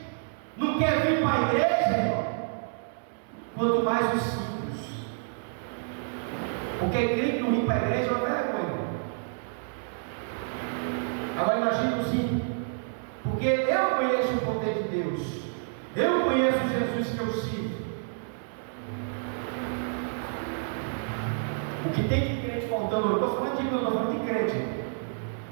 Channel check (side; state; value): left; silent; 59 dB below the other